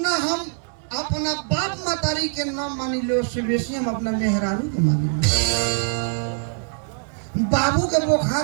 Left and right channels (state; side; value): silent; left; digital silence